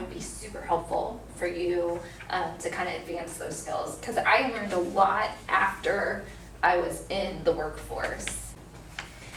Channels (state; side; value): identical; both; correlation 1.00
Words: be super helpful for you to kind of advance those skills. Because I learned a lot after I was in the workforce.